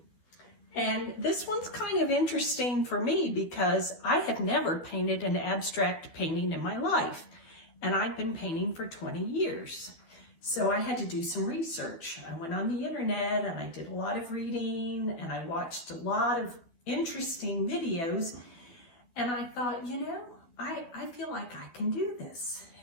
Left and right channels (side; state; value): right; late; 12 ms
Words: And this one's kind of interesting for me because I have never painted an abstract painting in my life. And I've been painting for 20 years. So I had to do some research. I went on the internet and I did a lot of reading and I watched a lot of interesting videos, and I thought, I feel like I can do this.